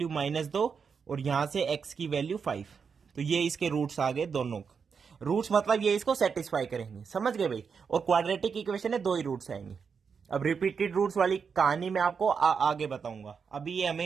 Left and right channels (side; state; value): left; quieter; 6.0 dB